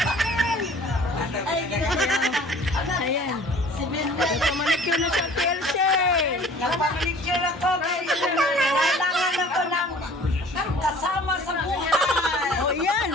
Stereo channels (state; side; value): normal; both; correlation 0.49